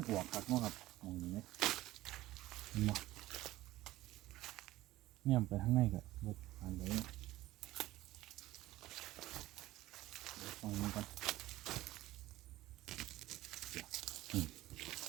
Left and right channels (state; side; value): quieter; left; 16.4 dB